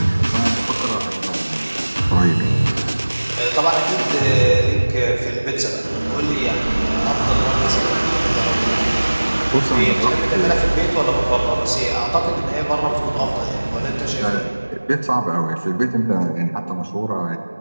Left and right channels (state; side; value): inverted; both; correlation -1.00